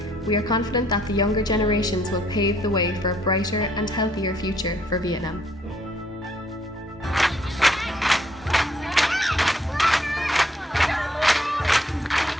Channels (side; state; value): both; normal; correlation 0.67